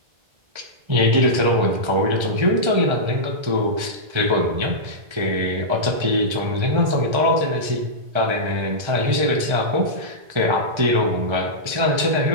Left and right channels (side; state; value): left; late; 1.3 ms